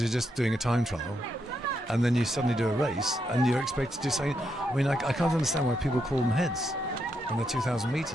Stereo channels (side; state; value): both; normal; correlation 0.80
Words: you're just doing a time trial, and then you suddenly do a race and you're expected to do something. I mean, I can't understand why people call them heads when they're 2,000